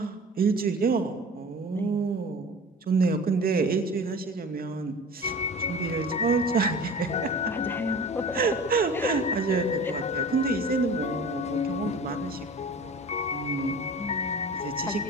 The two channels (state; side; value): normal; both; correlation 0.39